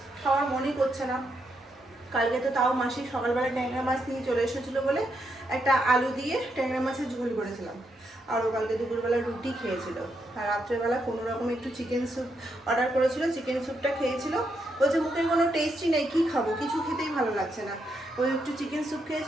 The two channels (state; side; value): normal; both; correlation 0.80